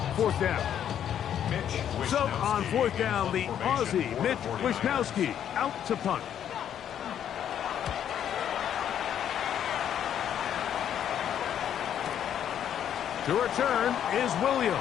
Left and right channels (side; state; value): right; quieter; 9.7 dB